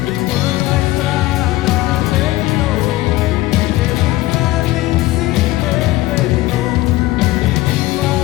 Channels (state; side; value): quieter; right; 17.7 dB